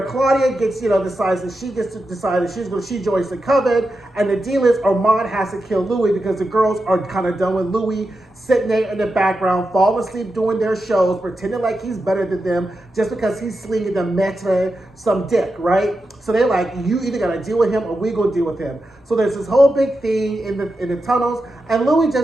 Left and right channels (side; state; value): both; normal; correlation 0.89